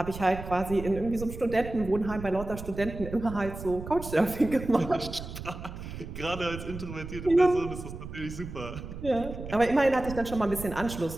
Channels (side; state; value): right; noise; rumble, 10 dB below the sound